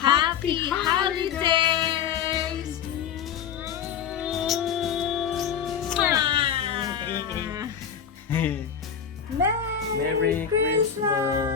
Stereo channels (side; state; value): right; quieter; 7.9 dB